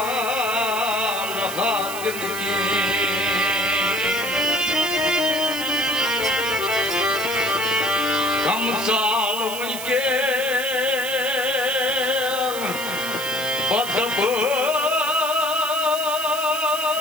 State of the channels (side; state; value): right; noise; hiss, 9 dB below the sound